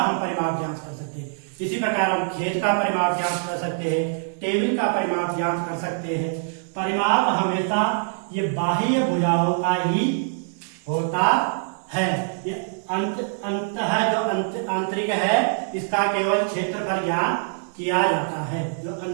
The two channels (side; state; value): left; silent; digital silence